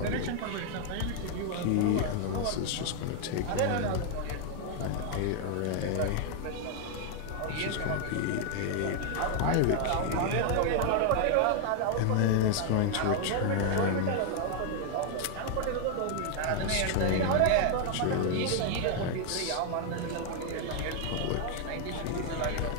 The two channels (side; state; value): both; different; correlation 0.00